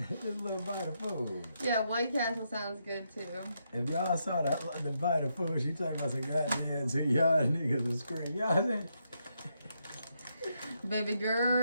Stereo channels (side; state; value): both; inverted; correlation -0.80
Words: This little bite of food. Yeah, White Castle sounds good too. If y'all saw the bite of food, she talking about some goddamn to y'all niggas to scream. Y'all saying? Baby